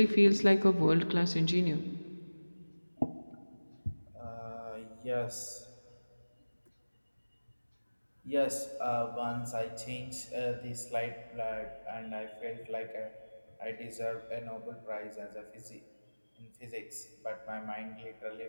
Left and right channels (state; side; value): inverted; both; correlation -1.00